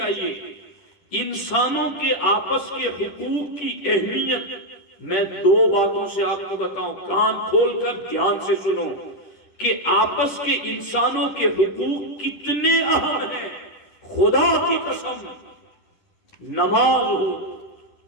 انسانوں کے آپس کے حقوق کی اہمیت میں دو باتوں سے آپ کو بتاؤں، کان کھول کر دھیان سے سنو کہ آپس کے انسانوں کے حقوق کتنے اہم ہیں۔ خدا کی قسم نماز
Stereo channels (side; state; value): right; late; 10 ms